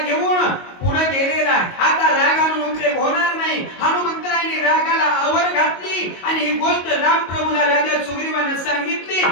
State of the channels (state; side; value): late; right; 22 ms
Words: पुढे गेलेला, आता राग आणून उपयोग होणार नाही. हनुमंतरायाने रागाला आवर घातली आणि ही गोष्ट रामप्रभूला राजा सुग्रीवाने सांगितली.